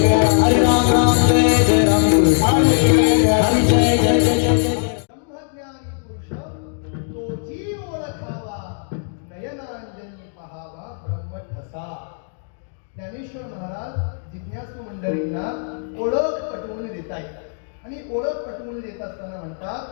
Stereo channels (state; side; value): silent; right; digital silence